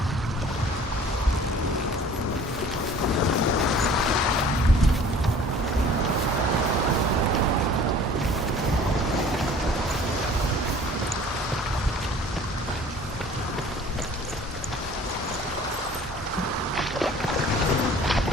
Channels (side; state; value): both; normal; correlation 0.49